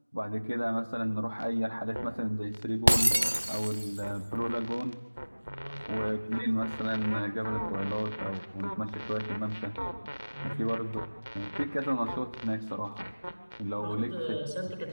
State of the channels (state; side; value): inverted; both; correlation -1.00